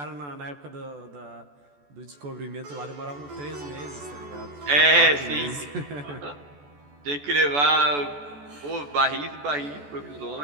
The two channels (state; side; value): late; left; 14 ms